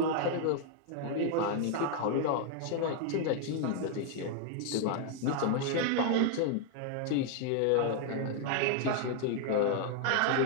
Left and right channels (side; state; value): both; different; correlation 0.00